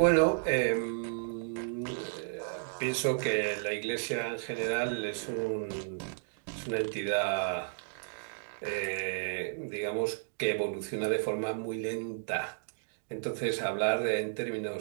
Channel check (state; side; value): silent; left; digital silence